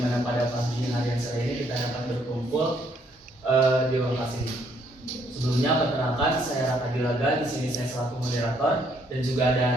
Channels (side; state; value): both; normal; correlation 0.69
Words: pada pagi hari yang sore ini kita dapat berkumpul di lokasi ini. Sebelumnya perkenalkan, saya Raka Dilaga, di sini saya selaku moderator dan juga